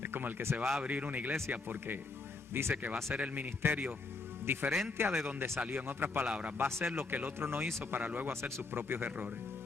Es como el que se va a abrir una iglesia porque dice que va a ser el ministerio diferente a de donde salió. En otras palabras, va a hacer lo que el otro no hizo para luego hacer sus propios errores.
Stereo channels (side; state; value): right; quieter; 3.7 dB